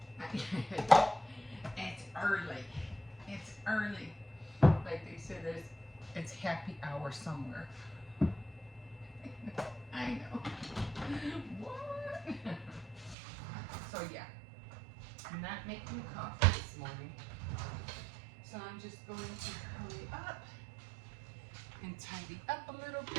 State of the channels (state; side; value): drops out; left; at 13.2 s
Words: It's early. It's early. Like they said, it's happy hour somewhere. I know. What? So, yeah. I'm not making coffee this morning. So, I'm just going to hurry up and tidy up a little